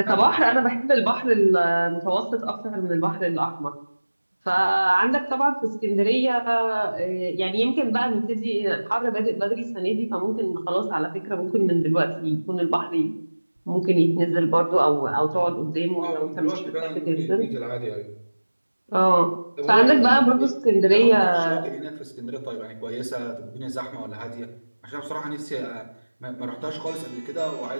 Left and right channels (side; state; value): both; inverted; correlation -1.00